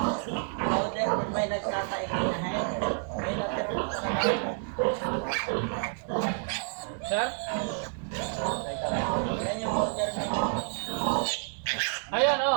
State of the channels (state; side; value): silent; left; 58 dB below the other